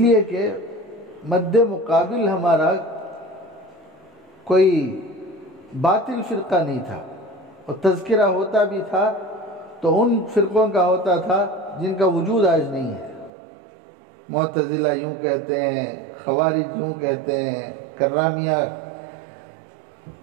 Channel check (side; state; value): left; drops out; at 13.3 s